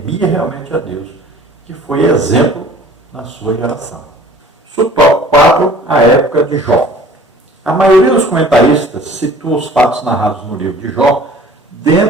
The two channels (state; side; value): normal; both; correlation 0.49